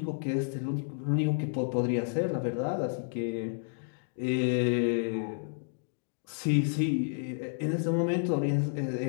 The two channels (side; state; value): right; silent; digital silence